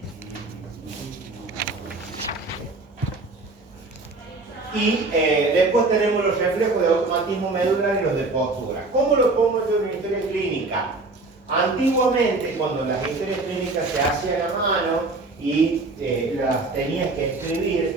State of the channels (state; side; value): quieter; left; 3.3 dB